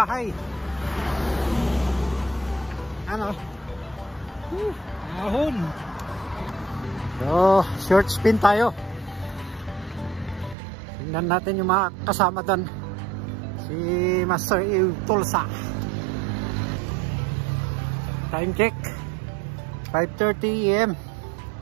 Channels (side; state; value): left; drops out; at 10.6 s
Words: Ano? Ahon. So, short spin tayo. Tingnan natin yung mga kasama doon. Si Master Tulsa. Time check 5:30 AM.